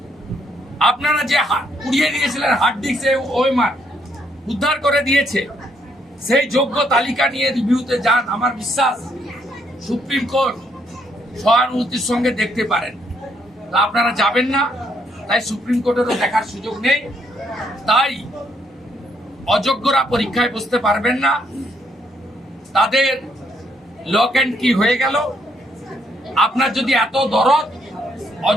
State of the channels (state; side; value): normal; both; correlation 0.72